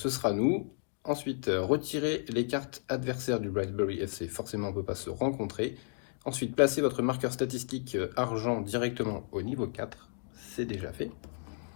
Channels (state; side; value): silent; right; 56 dB below the other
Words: sera nous. Ensuite, retirer les cartes adversaires du Brightsbury FC, forcément on ne peut pas se rencontrer. Ensuite, placez votre marqueur statistique argent directement au niveau 4, c'est déjà fait.